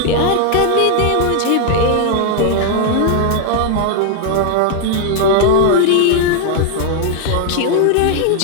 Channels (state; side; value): different; both; correlation 0.00